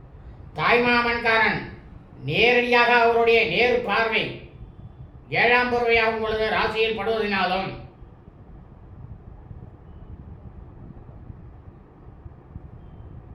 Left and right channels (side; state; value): both; identical; correlation 1.00